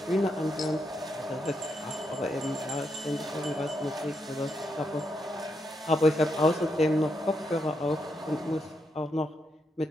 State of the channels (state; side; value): normal; both; correlation 0.81